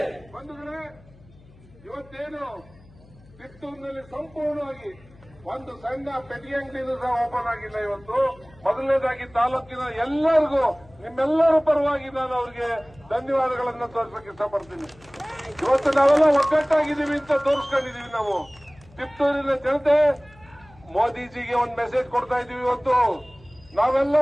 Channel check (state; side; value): noise; left; hum, 25 dB below the sound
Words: ಇವತ್ತೇನು ಕಿತ್ತೂರಿನಲ್ಲಿ ಸಂಪೂರ್ಣವಾಗಿ ಒಂದು ಸಣ್ಣ ಪೆಟ್ಟಿಗೆ ಅಂಗಡಿನೂ ಸಹ ಓಪನ್ ಆಗಿಲ್ಲ. ಇವತ್ತು ಮೊದಲನೇದಾಗಿ ತಾಲೂಕಿನ ಎಲ್ಲರಿಗೂ ನಿಮ್ಮೆಲ್ಲರ ಪರವಾಗಿ ನಾನು ಅವರಿಗೆ ಧನ್ಯವಾದಗಳನ್ನು ತೋರಿಸಕ್ಕೆ ಇಷ್ಟಪಡ್ತೀನಿ. ಇವತ್ತು ನಾವೆಲ್ಲ ಒಗ್ಗಟ್ಟಾಗಿದ್ದೀವಿ ಅಂತ ತೋರಿಸ್ಕೊಂಡಿದೀವಿ. ನಾವು ಕಿತ್ತೂರಿನ ಜನತೆ ಮೋದಿಜಿಗೆ ಒಂದು ಮೆಸೇಜ್ ಕೊಡ್ತಾ ಇದೀವಿ. ಇವತ್ತು ನಾವೆಲ್ಲ